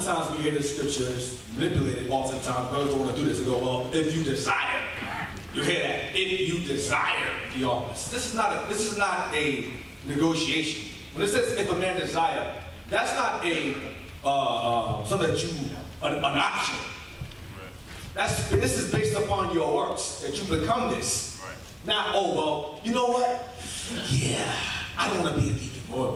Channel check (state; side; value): identical; both; correlation 1.00